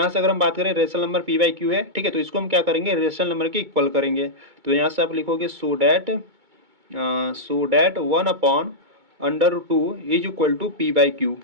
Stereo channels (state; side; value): late; left; 2.2 ms